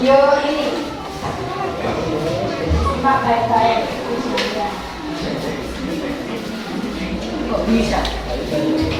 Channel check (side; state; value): both; identical; correlation 1.00